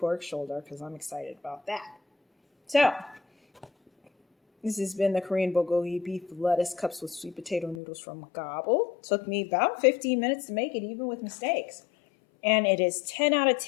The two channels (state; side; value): drops out; right; at 7.8 s